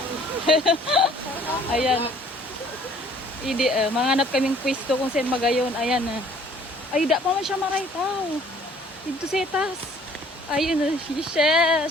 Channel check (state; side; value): normal; both; correlation 0.56